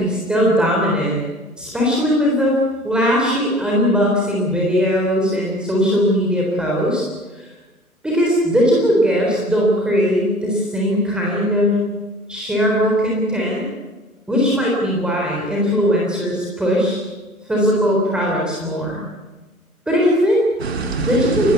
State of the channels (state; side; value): normal; both; correlation 0.47